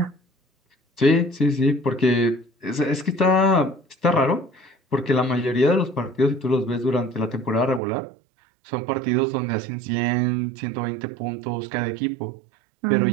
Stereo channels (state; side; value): drops out; left; at 7.8 s